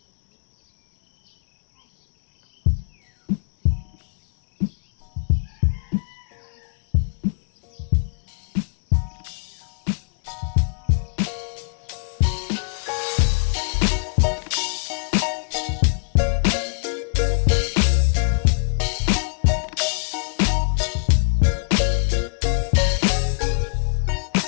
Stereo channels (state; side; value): silent; right; digital silence